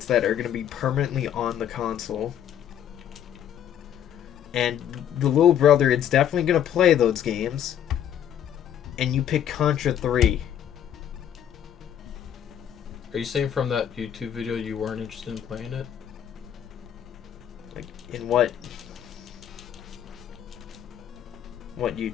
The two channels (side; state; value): right; quieter; 9.8 dB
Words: that are going to be permanently on the console. And the little brother is definitely going to play those games. And you pick Contra 3. Are you saying from that YouTube video you weren't interested in playing it? Like, in what? What